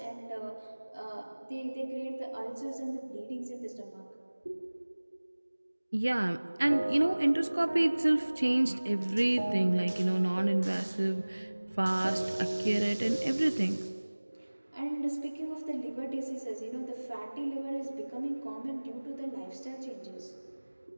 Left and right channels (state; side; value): inverted; both; correlation -1.00